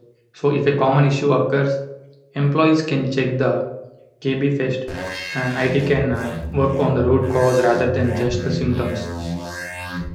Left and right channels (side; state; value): both; identical; correlation 1.00